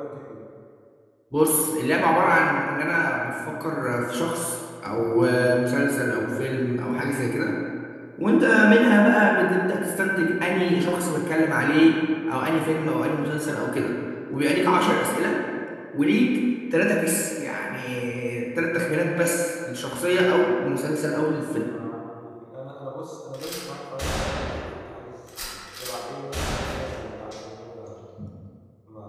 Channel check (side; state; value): both; identical; correlation 1.00